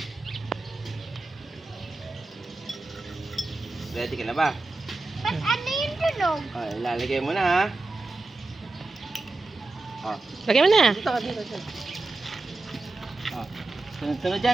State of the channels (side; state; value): left; quieter; 3.3 dB